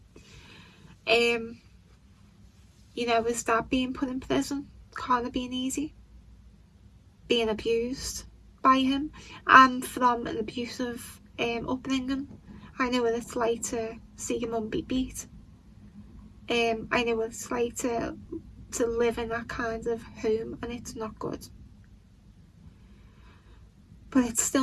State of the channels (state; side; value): identical; both; correlation 1.00